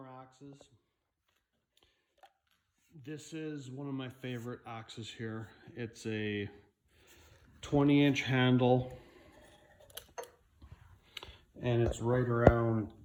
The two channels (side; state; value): both; identical; correlation 1.00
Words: axes. This is one of my favorite axes here. It's a 20-inch handle and it's right around